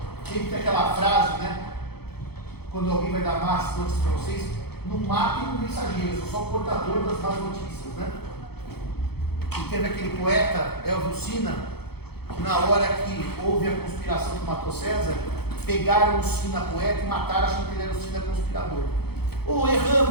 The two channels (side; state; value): right; late; 0.96 ms